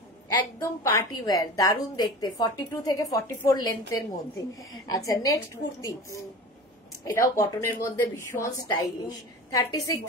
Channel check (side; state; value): both; normal; correlation 0.34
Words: একদম পার্টি ওয়্যার, দারুণ দেখতে, 42 থেকে 44 লেন্থের মধ্যে। আচ্ছা, নেক্সট কুর্তি, এটাও কটনের মধ্যে ভীষণ স্টাইলিশ, 36,